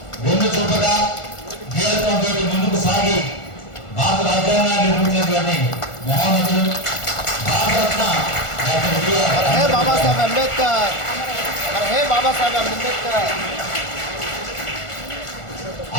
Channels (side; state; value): right; late; 1.4 ms